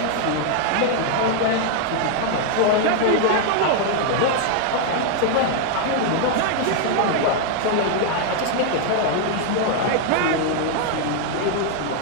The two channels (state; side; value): different; both; correlation 0.00